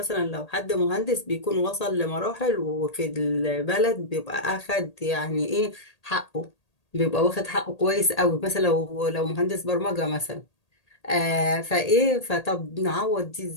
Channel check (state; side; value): late; right; 1.8 ms